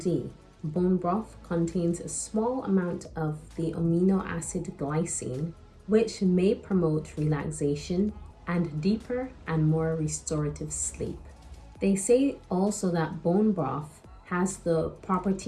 bone broth contains a small amount of the amino acid glycine, which may promote relaxation and deeper and more restorative sleep. They say also that bone broth has the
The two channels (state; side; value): identical; both; correlation 1.00